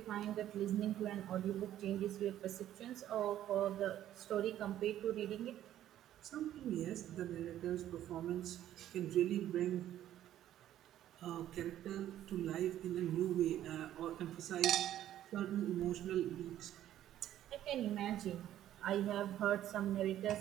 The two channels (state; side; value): quieter; left; 12.2 dB